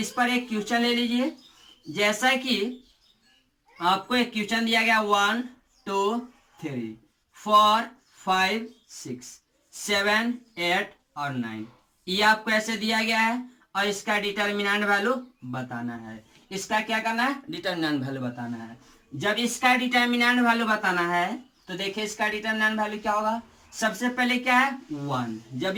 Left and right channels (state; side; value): identical; both; correlation 1.00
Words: पर एक क्वेश्चन ले लीजिए, जैसा कि आपको एक क्वेश्चन दिया गया 1 2 3 4 5 6 7 8 और 9, ये आपको ऐसे दिया गया है और इसका डिटर्मिनेंट वैल्यू बताना है। इसका क्या करना है, डिटर्मिनेंट वैल्यू बताना है। जब इसका डिटर्मिनेंट वैल्यू बताना है तो देखिए इसका डिटर्मिनेंट वैल्यू क्या होगा, सबसे पहले क्या है 1, जब